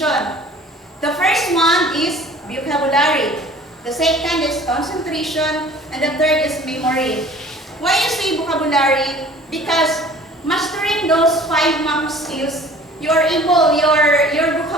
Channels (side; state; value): both; normal; correlation 0.48